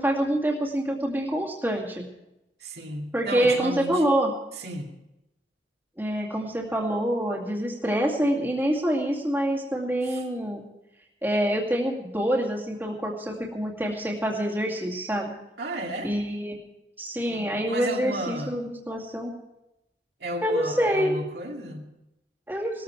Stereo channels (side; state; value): both; normal; correlation 0.77